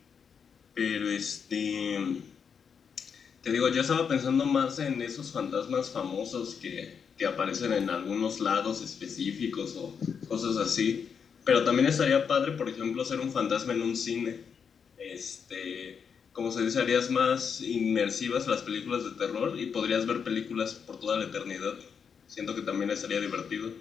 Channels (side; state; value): right; quieter; 6.6 dB